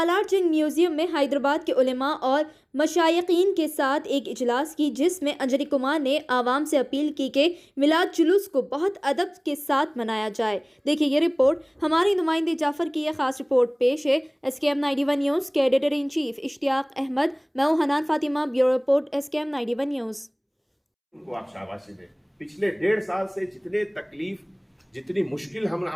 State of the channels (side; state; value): both; identical; correlation 1.00